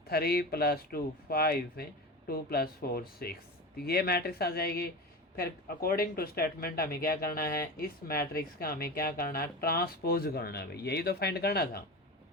3 + 2 5, 2 + 4 6। तो ये मैट्रिक्स आ जाएगी। फिर अकॉर्डिंग टू स्टेटमेंट हमें क्या करना है, इस मैट्रिक्स का हमें क्या करना है, ट्रांसपोज करना है भाई, यही तो फाइंड करना था।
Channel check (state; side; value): normal; both; correlation 0.27